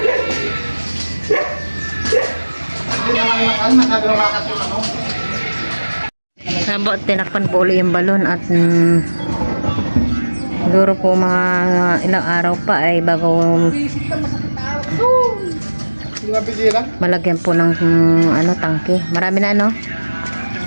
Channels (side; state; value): both; inverted; correlation -1.00